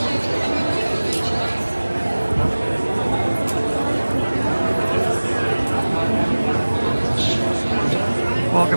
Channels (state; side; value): inverted; both; correlation -1.00